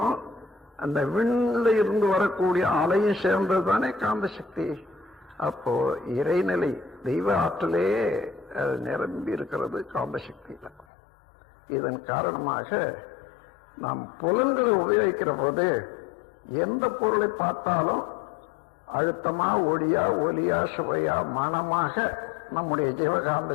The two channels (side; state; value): right; drops out; at 10.9 s